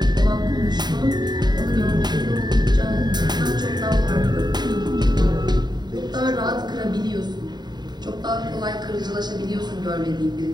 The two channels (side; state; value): left; late; 0.20 ms